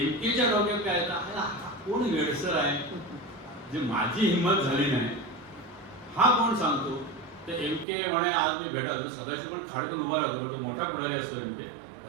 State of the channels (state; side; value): drops out; left; at 7.9 s